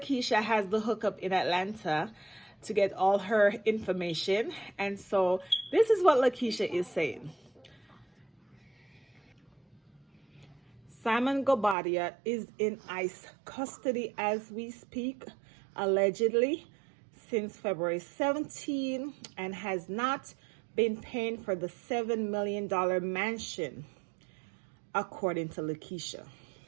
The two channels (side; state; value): left; drops out; at 11.8 s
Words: has the hookup in Atlanta to get all her information. And so this is what Lakeisha is saying. Simon Gobadia is in ICE custody as we speak, allegedly, since February 17 and has not been paying for the $7 million mansion, according to Lakeisha.